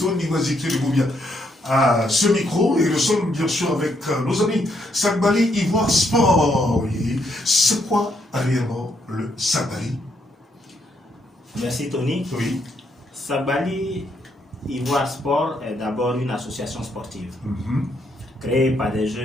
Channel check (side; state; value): both; normal; correlation 0.75